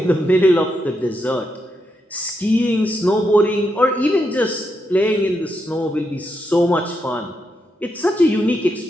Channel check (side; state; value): both; normal; correlation 0.82